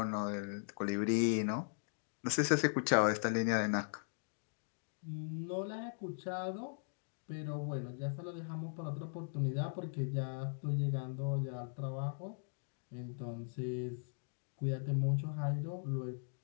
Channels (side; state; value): right; silent; digital silence